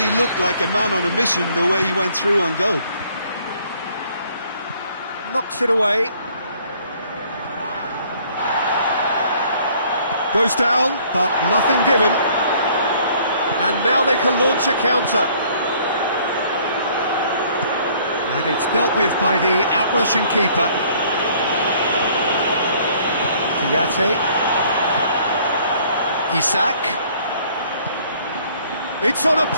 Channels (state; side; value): inverted; both; correlation -0.59